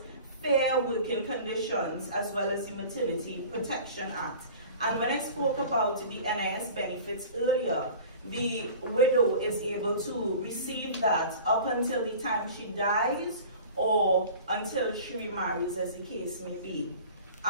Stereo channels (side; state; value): both; inverted; correlation -0.41